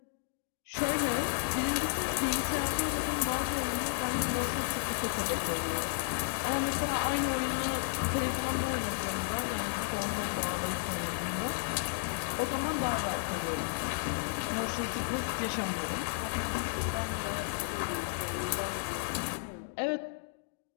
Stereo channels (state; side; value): silent; right; digital silence